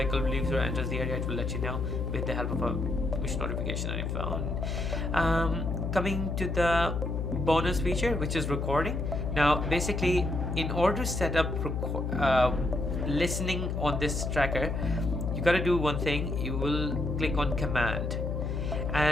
leaves or enters the area, it will let you know with the help of a push notification on your phone. Coming to the bonus feature, which is recording. Now basically, in order to set up listening on this tracker, you got to do one thing. You will click on command,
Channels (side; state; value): left; noise; hum, 2 dB below the sound